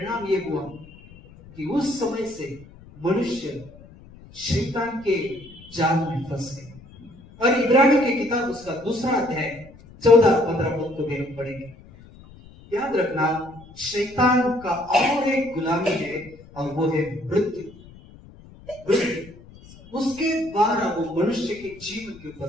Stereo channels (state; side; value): noise; left; rumble, 21 dB below the sound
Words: ये हुआ कि उस समय से मनुष्य शैतान के जाल में फंस गए। और इब्रानियों की किताब उसका 2 अध्याय 14-15 पद को भी हम पढ़ेंगे। याद रखना, शैतान का और एक गुलामी है, और वो है मृत्यु। उसके द्वारा वो मनुष्य के जीवन के